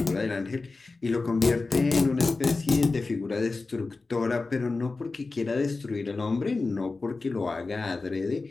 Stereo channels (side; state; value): right; quieter; 3.7 dB